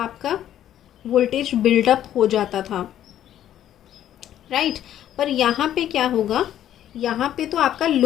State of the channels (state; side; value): quieter; right; 11.4 dB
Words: वोल्टेज बिल्डअप हो जाता था, राइट। पर यहाँ पे क्या होगा, यहाँ पे तो आपका